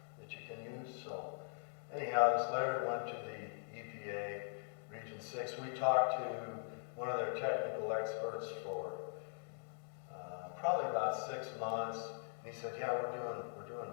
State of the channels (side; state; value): right; silent; digital silence